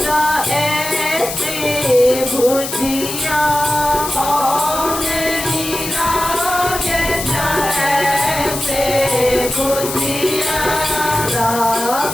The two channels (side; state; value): left; noise; hiss, 6 dB below the sound